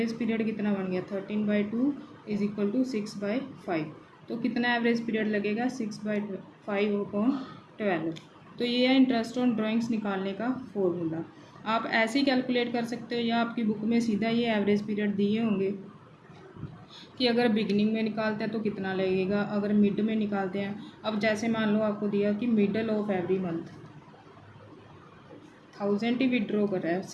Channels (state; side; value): identical; both; correlation 1.00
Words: पीरियड कितना बन गया? 13/2 इज इक्वल टू 6/5। तो कितना एवरेज पीरियड लगेगा? 6/5/12। तो ये है इंटरेस्ट ऑन ड्राइंग्स निकालने का फॉर्मूला। आप ऐसे ही कैलकुलेट कर सकते हो या आपकी बुक में सीधा ये एवरेज पीरियड दिए होंगे कि अगर बिगनिंग में निकालते हैं तो कितना लगेगा, अगर मिड में निकालते हैं। अब जैसे मान लो आपको दिया कि middle of every month 1000 he withdraw कर रहा है,